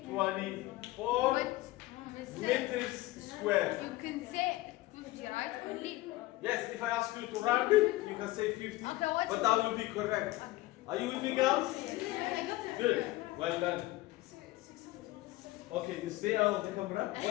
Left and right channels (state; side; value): quieter; right; 18.5 dB